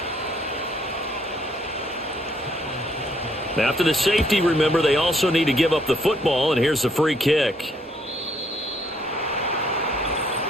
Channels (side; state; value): both; normal; correlation 0.68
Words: After the safety, remember, they also need to give up the football, and here's the free kick.